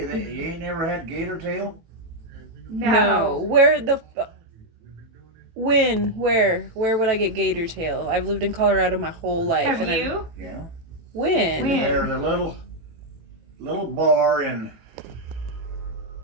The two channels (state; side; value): late; left; 18 ms